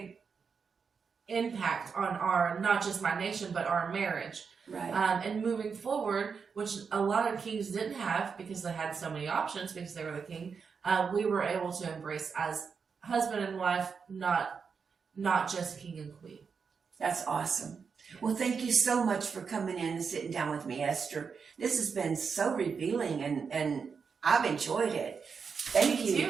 impact on not just my nation, but our marriage. Right. And moving forward, which a lot of kings didn't have because they had so many options because they were the king, we were able to embrace as husband and wife, not just king and queen. That's awesome. Well, thank you so much for coming in and sitting down with me, Esther. This has been so revealing, and I've enjoyed it. Thank you. Me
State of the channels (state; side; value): quieter; left; 5.8 dB